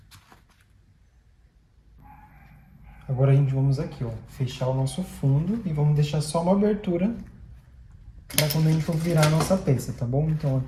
Agora a gente vamos aqui, ó, fechar o nosso fundo e vamos deixar só uma abertura para quando a gente for virar a nossa peça, tá bom? Então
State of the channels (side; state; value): both; identical; correlation 1.00